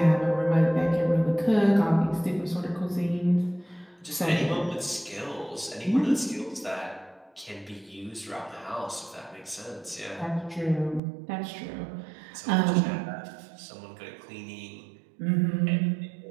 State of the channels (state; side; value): drops out; left; at 11.0 s